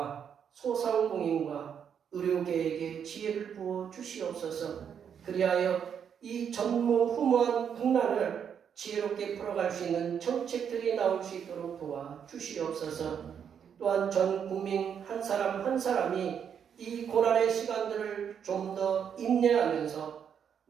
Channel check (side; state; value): left; quieter; 7.9 dB